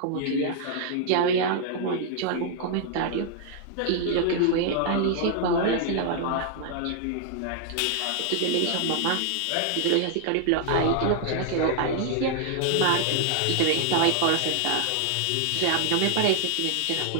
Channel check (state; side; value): different; both; correlation -0.01